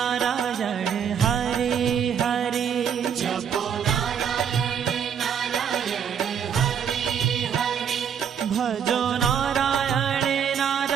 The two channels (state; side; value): quieter; left; 7.9 dB